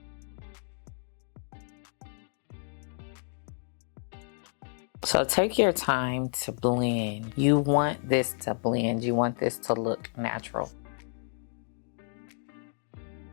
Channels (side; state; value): right; silent; digital silence